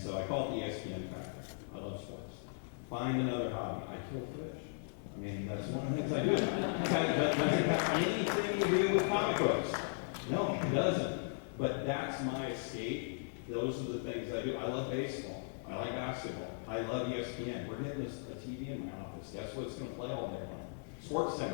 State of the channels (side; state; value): right; silent; digital silence